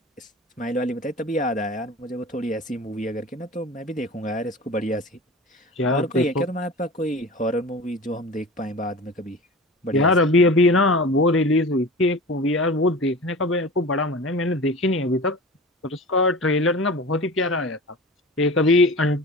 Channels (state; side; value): normal; both; correlation 0.35